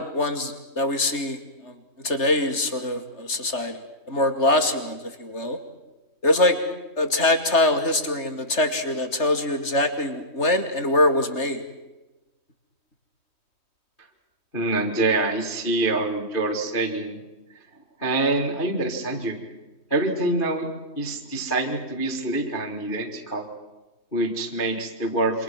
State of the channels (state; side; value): late; right; 3.3 ms